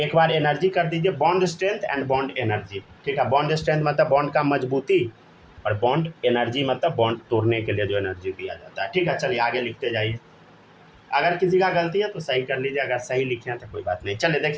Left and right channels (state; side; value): identical; both; correlation 1.00